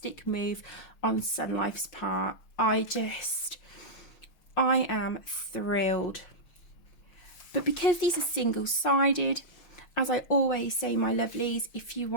move on Sunlife's part. I am thrilled. But because these are single-sided, as I always say, my lovelies, if you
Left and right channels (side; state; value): right; late; 5.6 ms